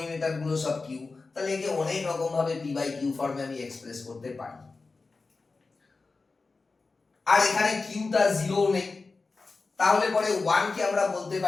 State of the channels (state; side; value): quieter; right; 4.0 dB